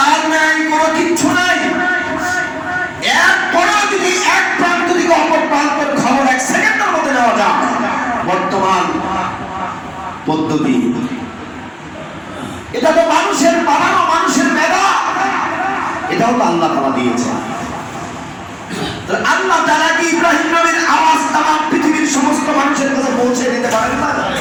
নাই, কোনো কিচ্ছু নাই, এরপরেও যদি এক প্রান্ত থেকে অপর প্রান্তের খবর 1 সেকেন্ডের মধ্যে নেওয়া যায়, বর্তমান পদ্ধতি। এটা তো মানুষের বানানো, মানুষের মেধা, এটাও তো আল্লাহ তাআলা দিয়েছে। আল্লাহ তাআলা কি ইব্রাহিম নবীর আওয়াজ তামাম পৃথিবীর সমস্ত মানুষের কাছে পৌঁছে দিতে পারেন না?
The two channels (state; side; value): identical; both; correlation 1.00